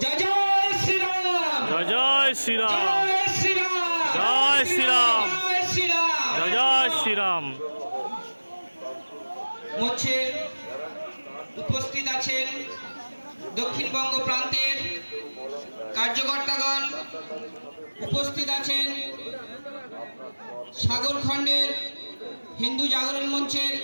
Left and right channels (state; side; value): inverted; both; correlation -1.00